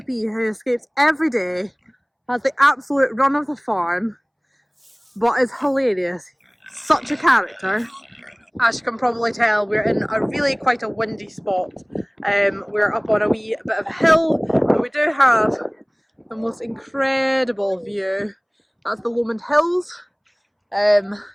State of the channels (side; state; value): both; identical; correlation 1.00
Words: who escapes every day, has the absolute run of the farm, but is hilarious. Such a character. As you can probably tell, we're in a really quite a windy spot. We're up on a wee bit of a hill, but we do have the most incredible view. That's the Lomond Hills. And